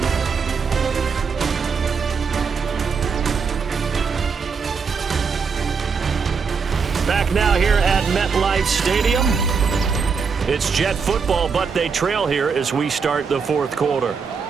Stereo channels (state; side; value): quieter; left; 5.6 dB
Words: Back now here at MetLife Stadium. It's Jet football, but they trail here as we start the fourth quarter.